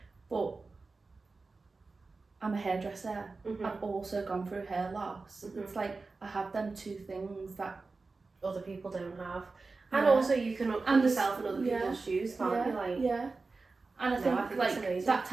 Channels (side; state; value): left; quieter; 3.9 dB